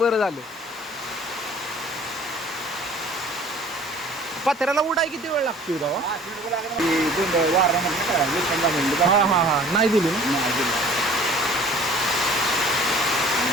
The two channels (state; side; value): normal; both; correlation 0.50